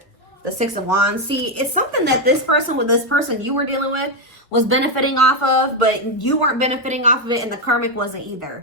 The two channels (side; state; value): both; normal; correlation 0.05